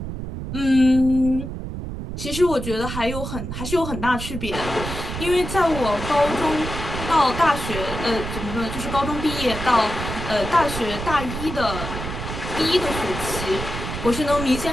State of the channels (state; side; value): noise; right; rumble, 6 dB below the sound